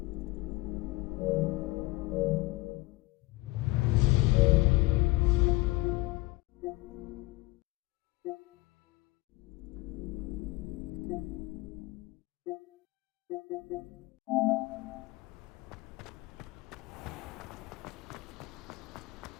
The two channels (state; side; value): quieter; right; 20.9 dB